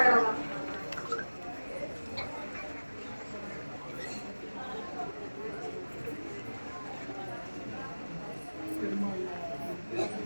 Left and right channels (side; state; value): both; inverted; correlation -1.00